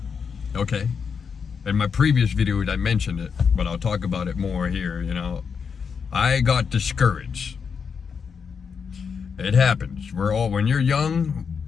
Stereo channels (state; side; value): quieter; right; 6.2 dB